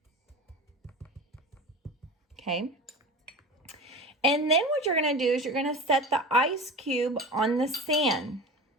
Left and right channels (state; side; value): normal; both; correlation 0.33